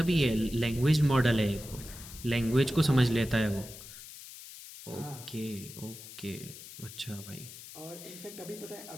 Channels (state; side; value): noise; left; hiss, 14 dB below the sound